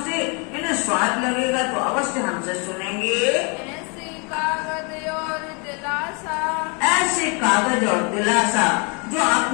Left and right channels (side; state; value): right; quieter; 33.9 dB